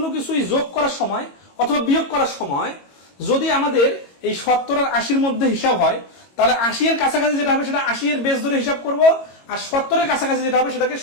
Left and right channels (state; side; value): late; right; 22 ms